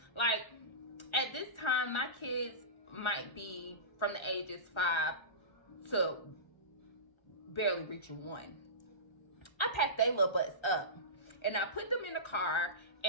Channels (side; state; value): right; late; 1.4 ms